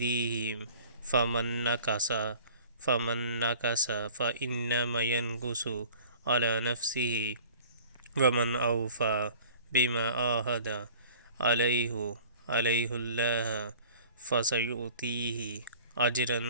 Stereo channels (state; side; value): inverted; both; correlation -0.47